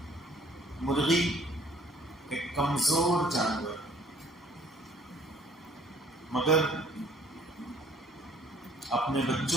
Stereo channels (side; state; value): both; normal; correlation 0.58